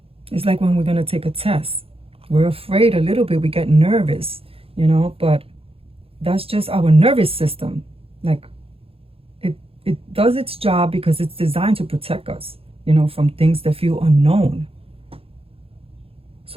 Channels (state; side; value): late; left; 0.27 ms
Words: It's like when we're going to take a test. We're afraid a little bit, we get nervous, you know, but that's just our nervous system. Like it does its job because it's designed to protect us, you know, from things that feel unknown.